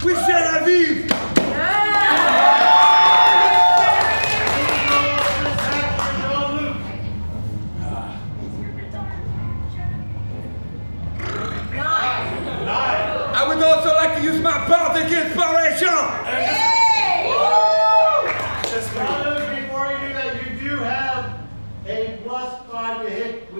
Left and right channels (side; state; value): both; inverted; correlation -1.00